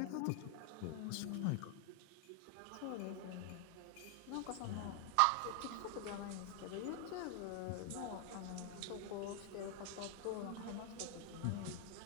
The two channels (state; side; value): different; both; correlation 0.00